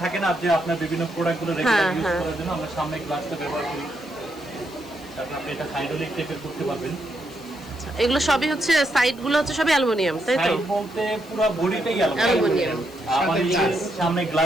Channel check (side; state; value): left; noise; hiss, 23 dB below the sound